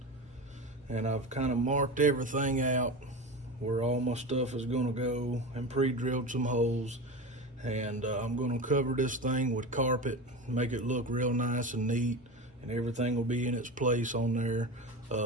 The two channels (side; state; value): both; normal; correlation 0.26